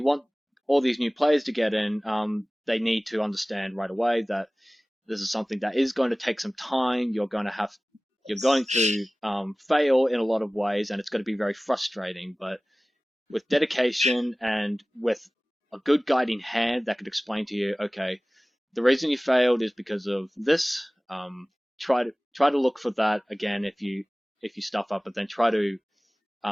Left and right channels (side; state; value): both; normal; correlation 0.98